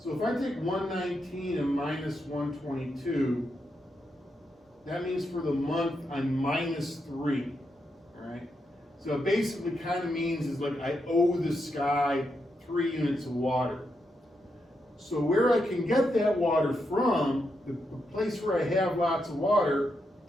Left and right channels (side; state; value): both; normal; correlation 0.83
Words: if I take 119 and minus 122, that means for the month I'm minus 3. All right, so it basically kind of means is like I owe the sky 3 units of water. So where I can get that water from, the place where I have lots of water